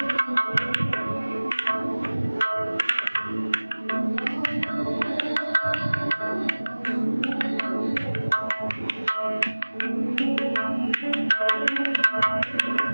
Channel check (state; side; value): inverted; both; correlation -1.00